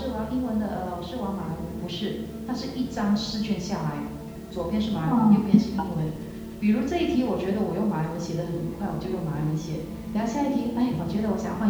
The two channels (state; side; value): identical; both; correlation 1.00